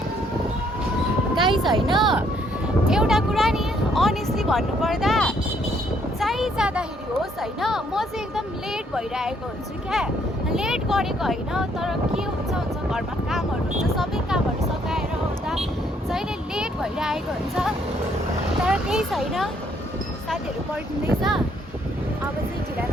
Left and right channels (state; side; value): normal; both; correlation 0.68